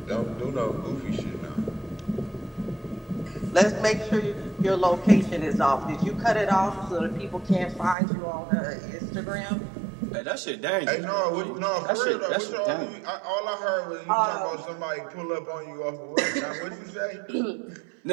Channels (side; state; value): left; drops out; at 8.0 s